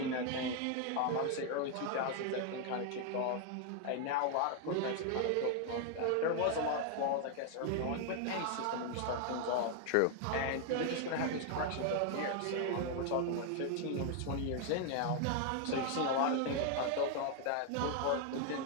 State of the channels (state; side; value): different; both; correlation 0.00